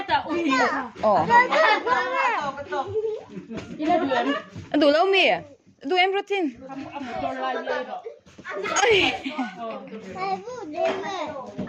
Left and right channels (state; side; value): identical; both; correlation 1.00